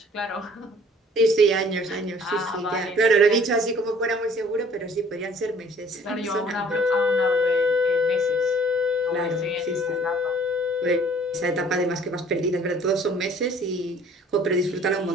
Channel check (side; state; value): both; normal; correlation 0.54